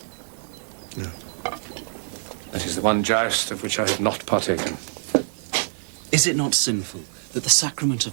No. That is the one joust of which I have not partaken. Is it not sinful that the sacrament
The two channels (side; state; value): left; silent; digital silence